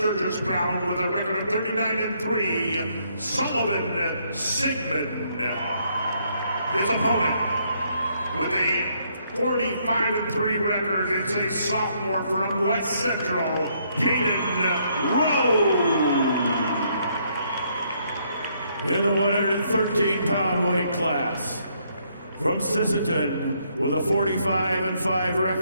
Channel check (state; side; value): inverted; both; correlation -0.71